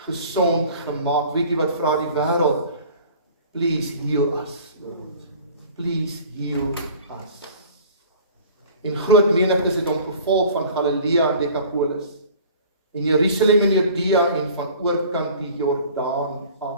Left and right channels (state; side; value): inverted; both; correlation -0.46